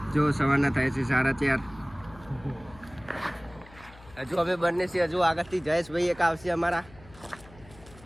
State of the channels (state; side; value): noise; left; hum, 22 dB below the sound